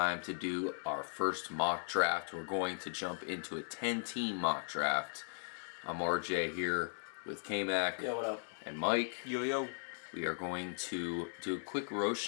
to do our first mock draft. We're going to jump into a 10-team mock draft. I'm RJ here with K-Mac. Yo, what up? And Mike. Yo. We are going to do a quick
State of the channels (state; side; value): silent; right; digital silence